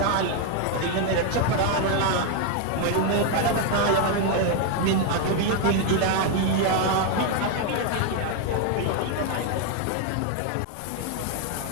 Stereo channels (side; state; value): both; different; correlation 0.01